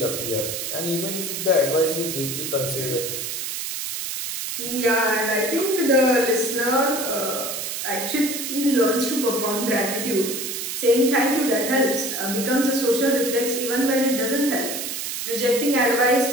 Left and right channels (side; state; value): right; noise; hiss, 4 dB below the sound